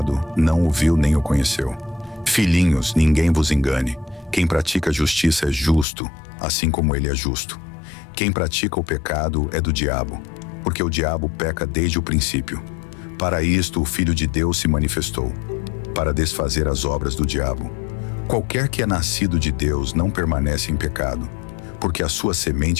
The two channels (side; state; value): right; drops out; at 5.9 s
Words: não o viu nem o conheceu. Filhinhos, ninguém vos engane. Quem pratica a justiça é justo, assim como ele é justo. Quem pratica o pecado é do diabo, porque o diabo peca desde o princípio. Para isto o Filho de Deus se manifestou, para desfazer as obras do diabo. Qualquer que é nascido de Deus não permanece em pecado, porque a sua